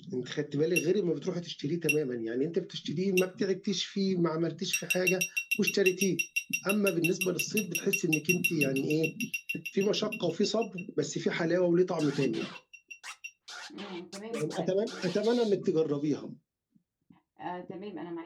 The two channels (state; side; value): identical; both; correlation 1.00